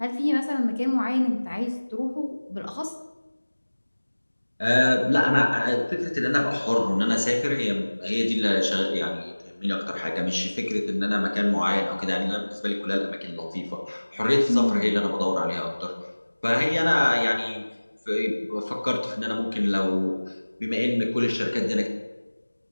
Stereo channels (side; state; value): both; inverted; correlation -1.00